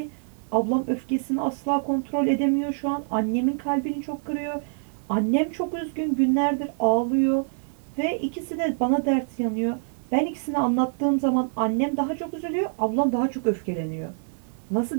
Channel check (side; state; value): left; silent; digital silence